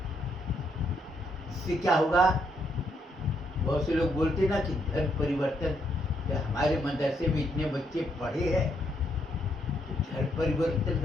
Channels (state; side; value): normal; both; correlation 0.75